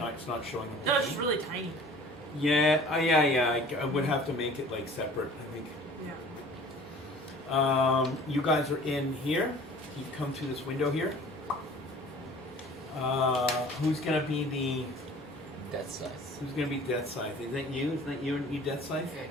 It's not showing. No, it's just really tiny. Yeah, yeah. I would have to make it separate. I think. Yeah. You guys are in here. You've come through this window here. Who's gonna be the? That's Who's gonna be Death Scythe? Is that you? Is that you Death Scythe?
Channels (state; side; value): normal; both; correlation 0.47